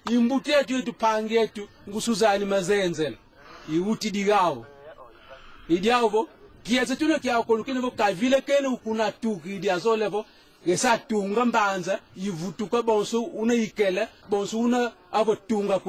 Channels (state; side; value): identical; both; correlation 1.00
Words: imbutetu yetu pange yetu ngusuzani mazenzen iuti digao idiao kiasi tuno kia kolukene vo kavile kene ukuna tuki idiazo levo gesa tunga mbanza ivutuka bonso una ikele bonso una avo tunga